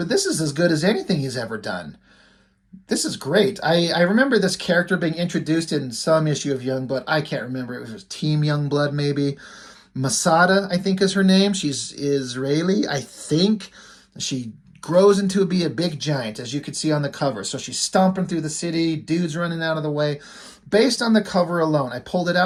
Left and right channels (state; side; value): identical; both; correlation 1.00